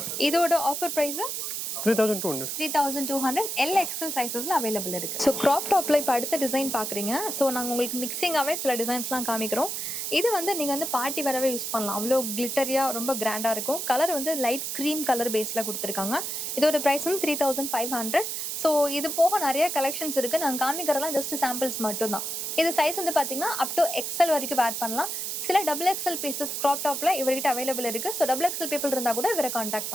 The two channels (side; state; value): right; noise; hiss, 3 dB below the sound